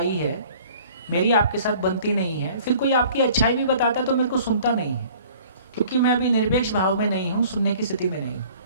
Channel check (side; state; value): both; inverted; correlation -0.51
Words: है, मेरी आपके साथ बनती नहीं है, फिर कोई आपकी अच्छाई भी बताता है तो मेरे को सुनता नहीं है, क्योंकि मैं अभी निरपेक्ष भाव में नहीं हूं, सुनने की स्थिति में नहीं हूं।